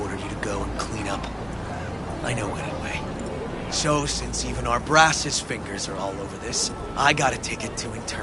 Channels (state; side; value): identical; both; correlation 1.00